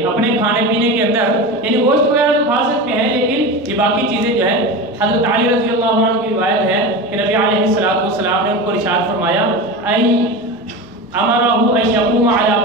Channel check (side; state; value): both; normal; correlation 0.26